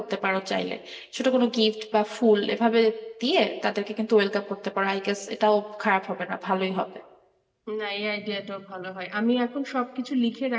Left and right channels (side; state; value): both; identical; correlation 1.00